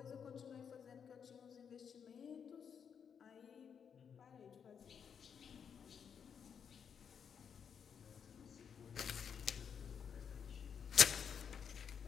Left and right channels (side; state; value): right; quieter; 7.3 dB